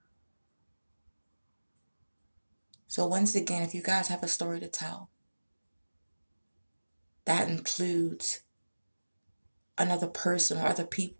So once again, if you guys have a story to tell, that includes another person or other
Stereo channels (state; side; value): inverted; both; correlation -1.00